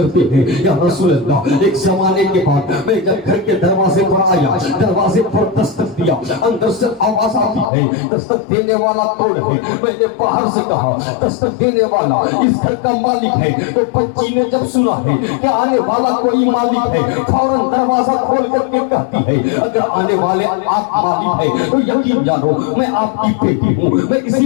ہیں یا رسول اللہ ایک زمانے کے بعد میں جب گھر کے دروازے پر آیا, دروازے پر دستک دیا, اندر سے آواز آتی ہے دستک دینے والا کون ہے؟ میں نے باہر سے کہا دستک دینے والا اس گھر کا مالک ہے. تو بچی نے جب سنا ہے کہ آنے والا کوئی مالک ہے فوراً دروازہ کھول کر کے کہتی ہے اگر آنے والے آپ مالک ہے تو یقین جانو میں آپ کی بیٹی ہوں, میں کسی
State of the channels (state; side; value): drops out; right; at 7.7 s